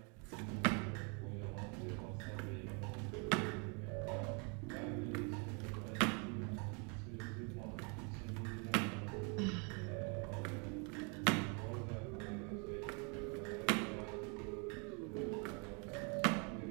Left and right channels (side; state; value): left; quieter; 35.0 dB